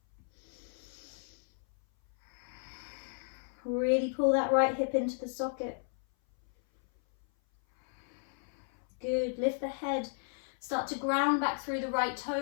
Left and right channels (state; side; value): silent; right; 55 dB below the other